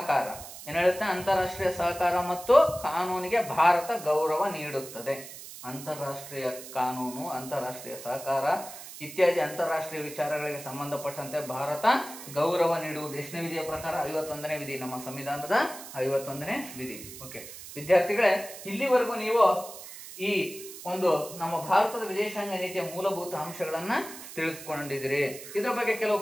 ಏನ್ ಹೇಳುತ್ತೆ? ಅಂತಾರಾಷ್ಟ್ರೀಯ ಸಹಕಾರ ಮತ್ತು ಕಾನೂನಿಗೆ ಭಾರತ ಗೌರವ ನೀಡುತ್ತದೆ. ಅಂತಾರಾಷ್ಟ್ರೀಯ ಕಾನೂನು, ಅಂತಾರಾಷ್ಟ್ರೀಯ ಸಹಕಾರ ಇತ್ಯಾದಿ ಅಂತಾರಾಷ್ಟ್ರೀಯ ವಿಚಾರಗಳಿಗೆ ಸಂಬಂಧಪಟ್ಟಂತೆ ಭಾರತ ಗೌರವ ನೀಡುವುದು ಎಷ್ಟನೇ ವಿಧಿಯ ಪ್ರಕಾರ? 51ನೇ ವಿಧಿ, ನಮ್ಮ ಸಂವಿಧಾನದ 51ನೇ ವಿಧಿ. ಓಕೆ ವಿದ್ಯಾರ್ಥಿಗಳೇ, ಇಲ್ಲಿವರೆಗೂ ನೀವು ಈ ಒಂದು ನಮ್ಮ ಭಾರತದ ವಿದೇಶಾಂಗ ನೀತಿಯ ಮೂಲಭೂತ ಅಂಶಗಳನ್ನ ತಿಳಿದುಕೊಂಡಿದ್ದೀರಿ. ಇದರ ಬಗ್ಗೆ ಕೆಲವು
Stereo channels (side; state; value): right; noise; hiss, 13 dB below the sound